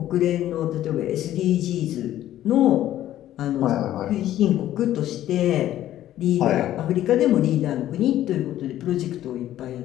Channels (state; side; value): quieter; right; 13.0 dB